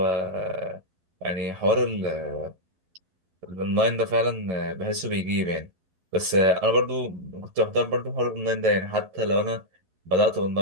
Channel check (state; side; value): late; left; 11 ms